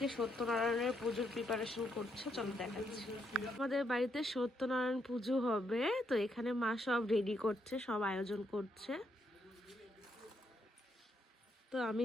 সত্যনারায়ণের পুজোর প্রিপারেশন করছে, চলো দেখাচ্ছি। আমাদের বাড়িতে সত্যনারায়ণ পুজো হবে, তো এখানে মা সব রেডি করছে, সব আয়োজন করছে। তো আমি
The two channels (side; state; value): both; normal; correlation 0.77